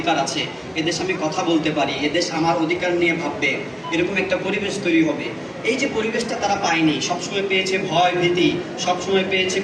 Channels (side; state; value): both; identical; correlation 1.00